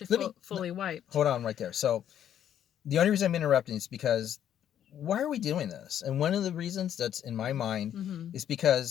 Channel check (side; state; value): right; quieter; 10.1 dB